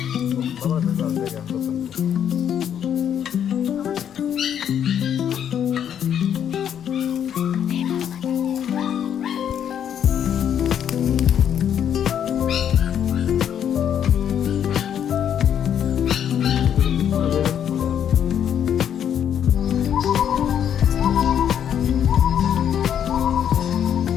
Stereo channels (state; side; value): quieter; right; 9.1 dB